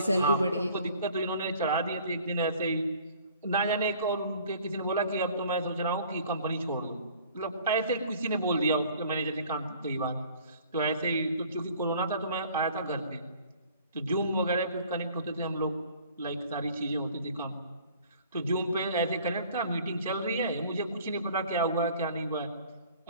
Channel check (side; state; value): both; inverted; correlation -0.52